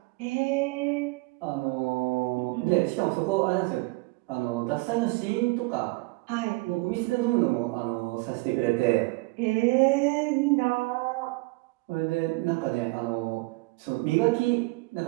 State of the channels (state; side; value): quieter; left; 25.1 dB